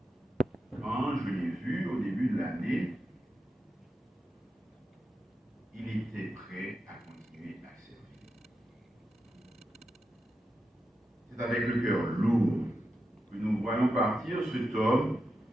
Quand je l'ai vu au début de l'année, il était prêt à continuer à servir. C'est avec le cœur lourd que nous voyons partir cet homme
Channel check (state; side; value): normal; both; correlation 0.89